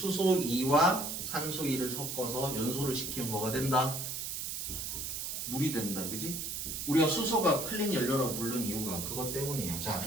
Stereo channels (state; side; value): noise; right; hiss, 4 dB below the sound